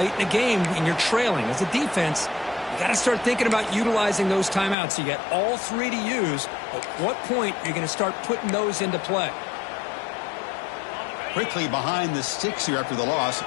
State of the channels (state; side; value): drops out; right; at 4.8 s